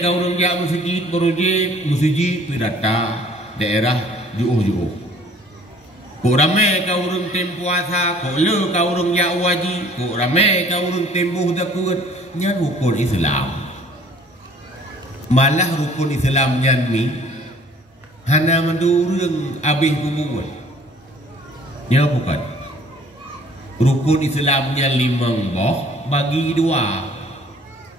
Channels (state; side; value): normal; both; correlation 0.55